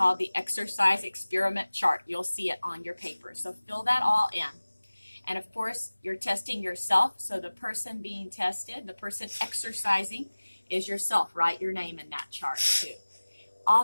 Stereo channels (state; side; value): inverted; both; correlation -1.00